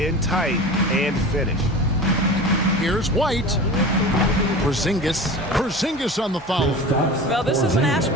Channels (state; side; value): normal; both; correlation 0.34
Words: tight and finish. Here's White. Porzingis on the foul. Well, this is an